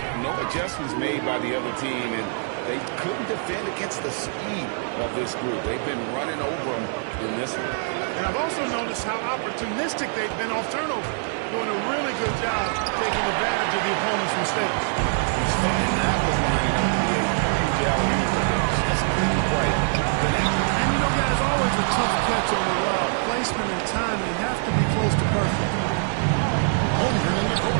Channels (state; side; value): silent; left; 59 dB below the other